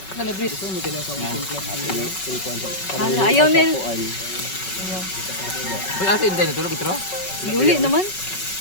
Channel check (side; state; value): right; late; 5.3 ms